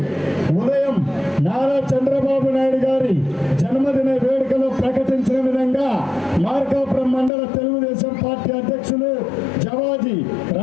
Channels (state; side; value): drops out; right; at 7.3 s